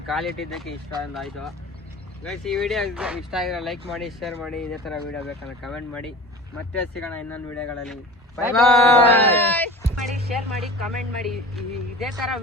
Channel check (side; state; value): both; normal; correlation 0.37